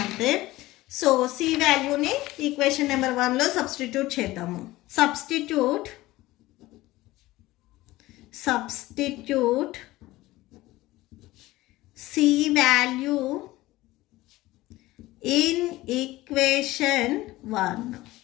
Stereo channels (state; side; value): quieter; right; 18.1 dB